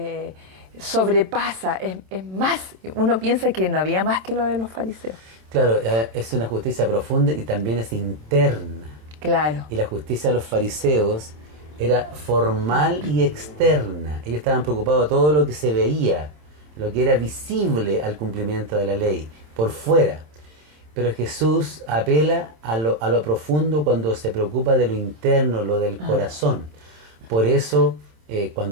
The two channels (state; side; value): late; left; 27 ms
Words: sobrepasa, es más. Uno piensa que no había más que lo de los fariseos. Claro, es una justicia profunda y también es interna. Claro. Y la justicia de los fariseos era formal y externa. Ellos estaban preocupados de todo lo que se veía, lo que era visible al cumplimiento de la ley, por fuera. Pero Jesús apela a lo profundo cuando se preocupa de lo interno, lo del corazón. Por eso,